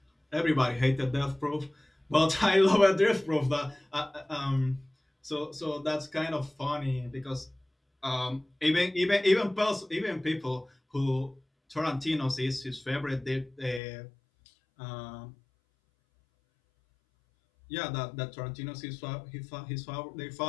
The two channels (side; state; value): right; drops out; at 13.8 s